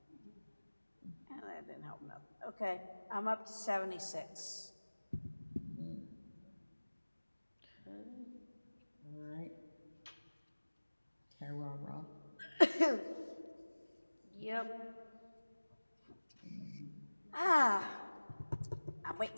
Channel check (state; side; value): inverted; both; correlation -1.00